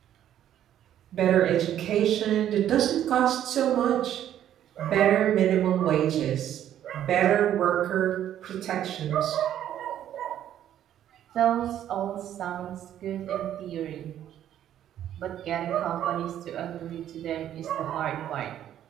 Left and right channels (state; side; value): quieter; left; 11.1 dB